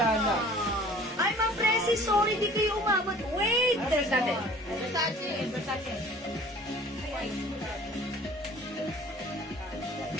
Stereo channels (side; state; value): both; normal; correlation 0.49